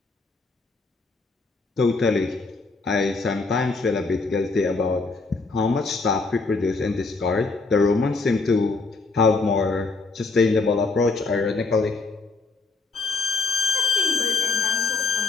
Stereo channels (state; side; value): quieter; right; 3.9 dB